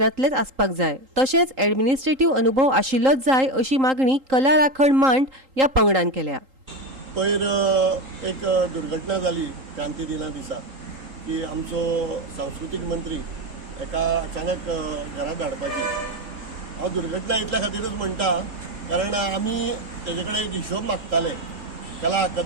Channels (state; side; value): late; left; 3.8 ms